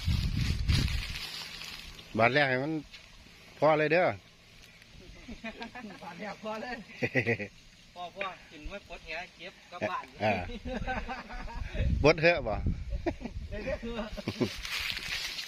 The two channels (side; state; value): both; identical; correlation 1.00